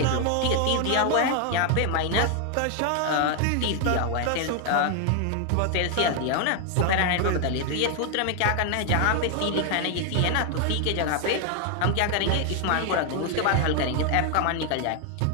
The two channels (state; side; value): different; both; correlation 0.00